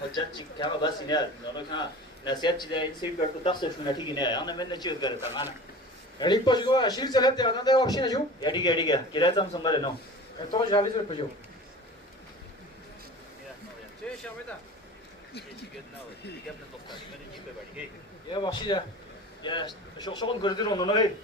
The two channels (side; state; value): both; normal; correlation 0.37